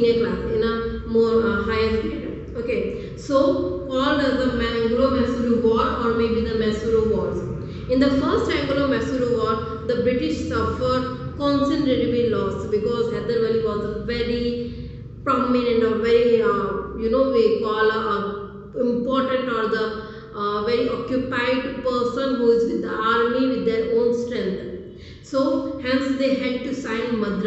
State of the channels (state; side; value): identical; both; correlation 1.00